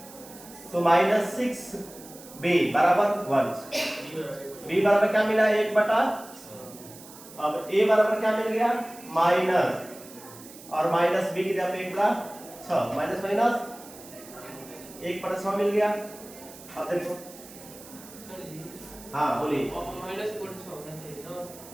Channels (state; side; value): noise; right; hiss, 18 dB below the sound